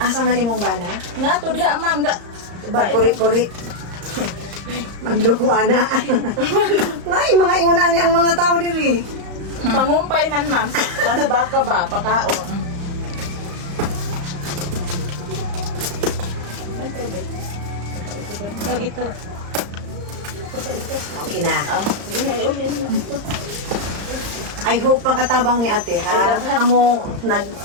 man imong bana? Nga to diha, ma'am. Kuri-kuri. Magluko ana. Nay, mga inguna ni ang mga tao diri. Pangumpay man, ma'am. Ano ba ka ba? Pakaon. Ito. Okay na. Sige na, iulin mo. I hope makatabang ni ate ha. Amo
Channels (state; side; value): late; left; 35 ms